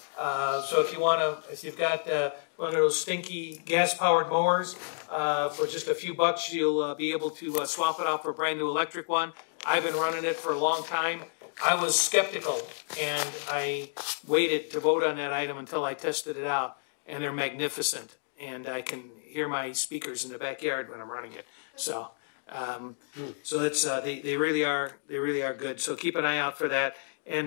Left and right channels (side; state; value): right; silent; digital silence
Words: So if you've got one of those stinky gas powered mowers, for just a few bucks you'll be able to swap it out for a brand new electric one. I've been running it for a long time. I was skeptical, and I waited to vote on that item until I tested it out, and they're magnificent, and I can hear my speakers in the backyard when I'm running it. So, they really are good. So keep an eye out for that.